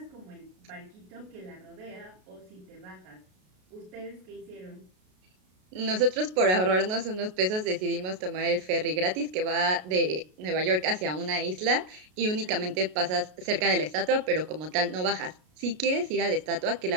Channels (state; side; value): late; left; 33 ms